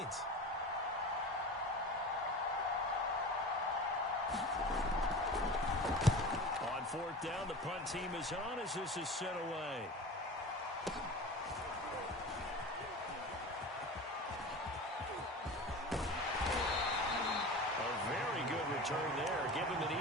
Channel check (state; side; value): normal; both; correlation 0.33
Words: On 4th down, the punt team is on as this is sent away. Return there, give him an